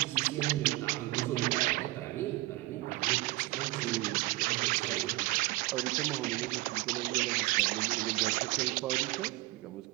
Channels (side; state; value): left; quieter; 20.4 dB